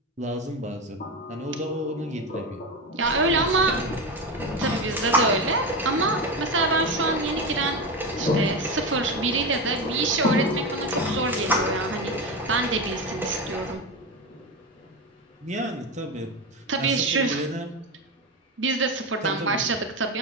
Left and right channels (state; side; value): normal; both; correlation 0.18